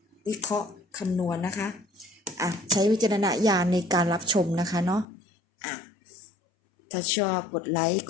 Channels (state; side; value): drops out; right; at 5.1 s